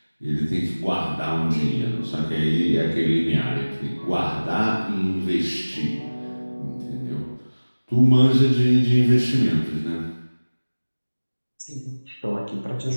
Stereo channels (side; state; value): both; inverted; correlation -1.00